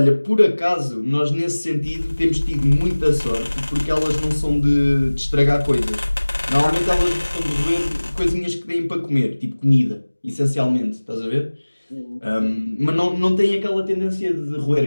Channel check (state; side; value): inverted; both; correlation -1.00